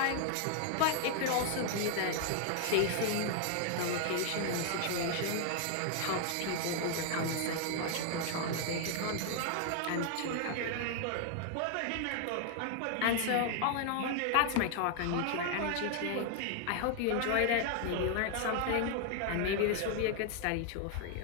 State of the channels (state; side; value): different; both; correlation 0.00